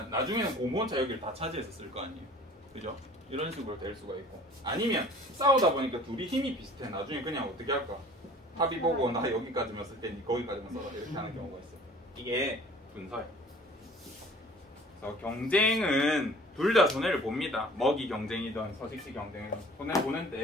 나중에는 공무원차 여기를 다 차지해서 쓸 거 아니에요. 그죠? 이런 식으로 될 수가 있고. 아니면 싸우다 보니까 둘이 힘이 비슷해. 나중에 그냥 어떻게 할까? 합의 보고 나 여기까지만 쓸 테니 거기까지만 써라. 이렇게 하는 경우가 있어. 이게 분서예요. 그래서 경쟁은 둘 다 손해를 봅니다. 먹이 경쟁이든 서식지 경쟁이든 손해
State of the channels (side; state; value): both; normal; correlation 0.48